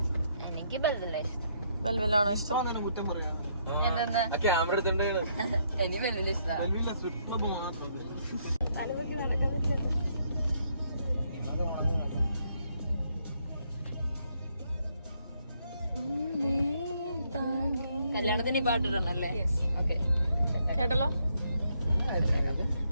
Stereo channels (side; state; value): both; inverted; correlation -0.73